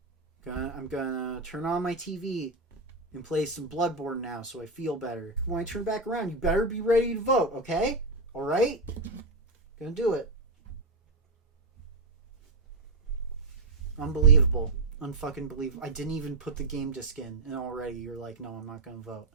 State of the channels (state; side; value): quieter; left; 3.0 dB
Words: I'm gonna turn on my TV and play some Bloodborne now so I feel better. When I turn back around, you better be ready to vote, okay? Alright? Gonna do it. Unbelievable. Unfucking believable. I didn't even put the game disc in, and already you're like, no, I'm not gonna vote.